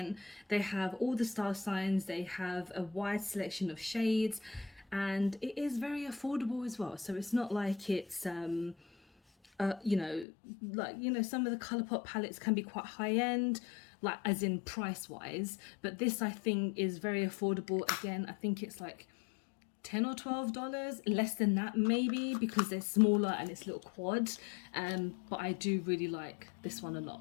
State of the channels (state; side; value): drops out; right; at 10.2 s